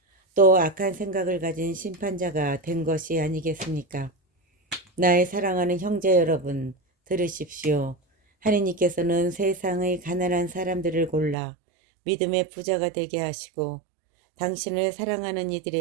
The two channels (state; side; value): drops out; left; at 11.4 s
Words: 또 악한 생각을 가진 심판자가 된 것이 아니겠습니까? 나의 사랑하는 형제 여러분, 들으십시오. 하느님께서는 세상의 가난한 사람들을 골라 믿음의 부자가 되게 하시고 당신을 사랑하는